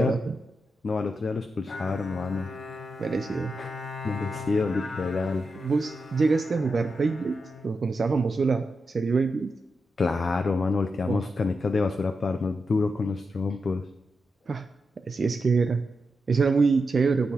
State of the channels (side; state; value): both; normal; correlation 0.87